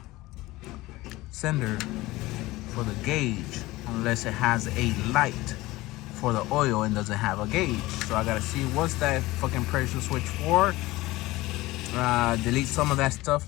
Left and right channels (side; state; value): right; quieter; 19.1 dB